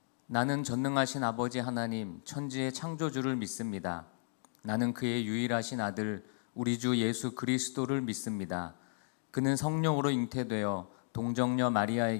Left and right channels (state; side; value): silent; right; digital silence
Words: 나는 전능하신 아버지 하나님, 천지의 창조주를 믿습니다. 나는 그의 유일하신 아들, 우리 주 예수 그리스도를 믿습니다. 그는 성령으로 잉태되어 동정녀